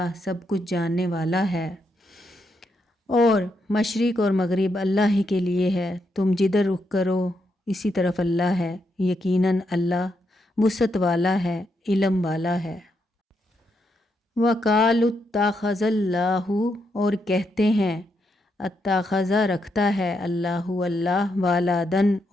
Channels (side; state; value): both; normal; correlation 0.80